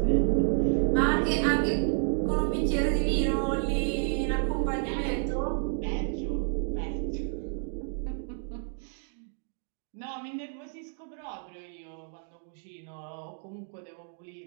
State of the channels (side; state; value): left; silent; 58 dB below the other